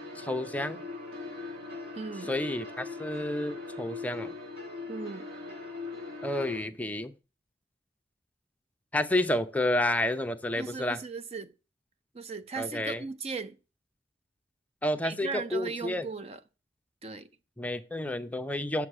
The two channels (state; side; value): normal; both; correlation 0.67